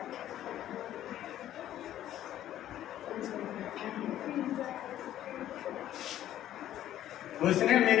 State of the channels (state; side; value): quieter; right; 12.3 dB